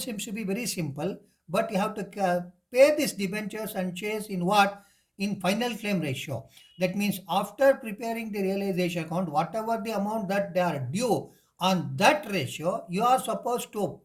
to be very simple, but you have to pay these debentures and shares in what? In final claim ratio. That means after preparing the realization account, whatever the amount that they are due on that ratio, you are supposed to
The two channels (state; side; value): identical; both; correlation 1.00